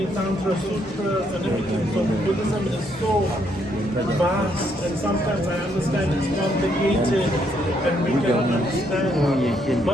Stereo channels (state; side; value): normal; both; correlation 0.73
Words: Tantra sutras and everything. So Buddhism is so vast, and sometimes I understand it's complicated and we cannot understand.